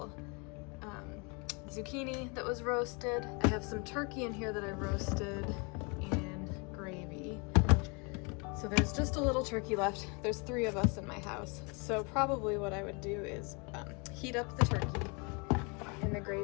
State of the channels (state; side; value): quieter; right; 32.1 dB